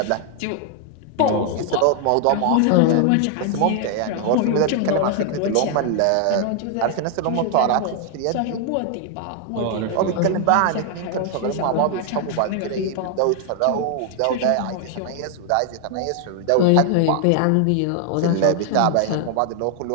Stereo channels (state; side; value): different; both; correlation 0.00